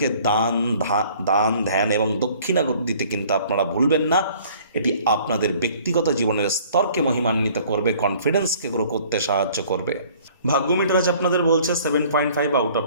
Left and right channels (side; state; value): both; inverted; correlation -0.54